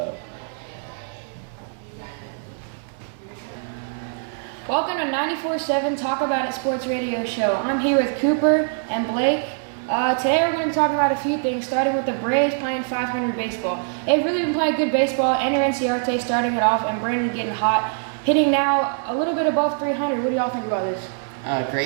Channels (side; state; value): left; silent; digital silence